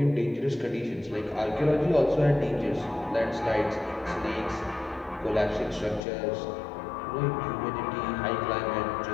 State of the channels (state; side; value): drops out; right; at 6.0 s